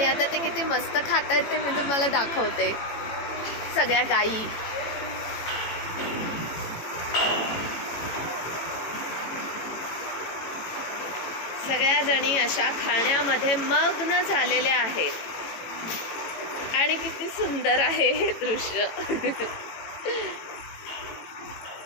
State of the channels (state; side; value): late; right; 18 ms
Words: आता ते किती मस्त खात आहेत ते मी तुम्हाला दाखवते. सगळ्या गायी सगळ्या जणी अशा खाण्यामध्ये मग्न झालेल्या आहेत आणि किती सुंदर आहे हे दृश्य.